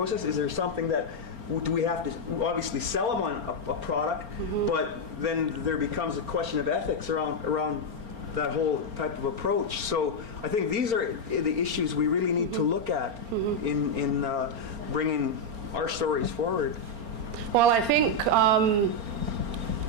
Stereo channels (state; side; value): late; left; 4.4 ms